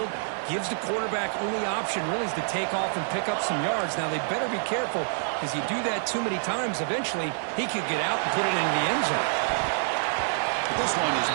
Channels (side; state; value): left; silent; 56 dB below the other